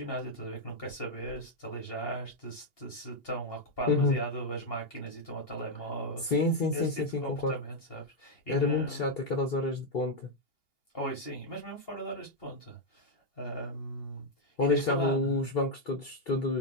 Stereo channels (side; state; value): right; late; 2.8 ms